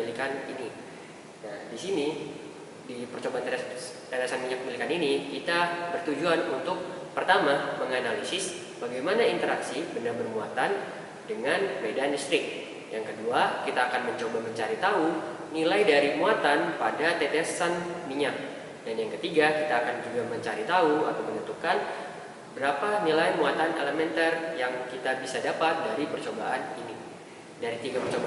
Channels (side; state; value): both; identical; correlation 1.00